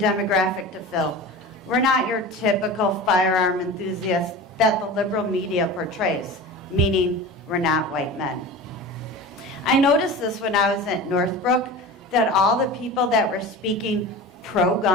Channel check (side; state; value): both; normal; correlation 0.33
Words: to fill. We're not your typical firearm enthusiast that the liberal media portrays, meaning we're not white men. I noticed this when I was at Northbrook, that all the people that were speaking